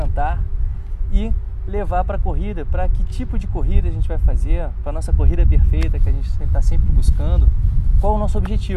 e levar para a corrida, para que tipo de corrida a gente vai fazer, para a nossa corrida perfeita que a gente está sempre buscando, qual o nosso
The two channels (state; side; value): identical; both; correlation 1.00